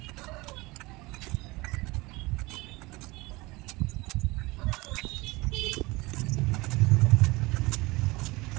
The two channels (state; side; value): quieter; left; 22.7 dB